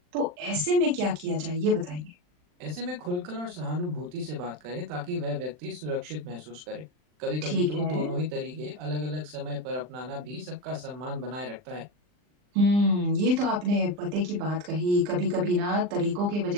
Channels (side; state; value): left; late; 39 ms